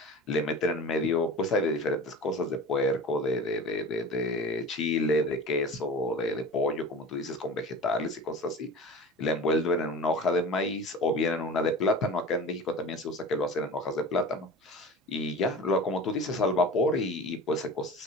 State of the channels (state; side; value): normal; both; correlation 0.35